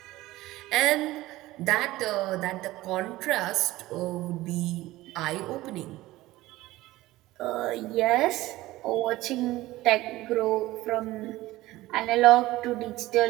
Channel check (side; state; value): left; quieter; 17.5 dB